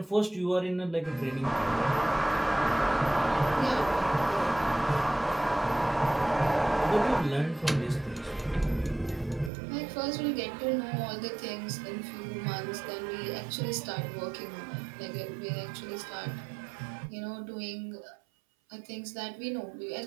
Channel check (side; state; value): left; drops out; at 9.5 s